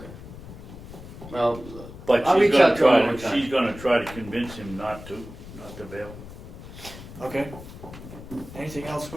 Well, But I'll she's reach out gonna to him try, one time. she's gonna try to convince him not to bail. Okay. Anything else,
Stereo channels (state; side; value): noise; left; rumble, 14 dB below the sound